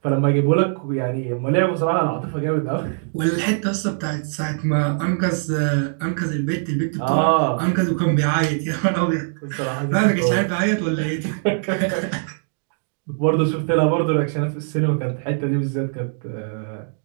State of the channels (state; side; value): silent; left; digital silence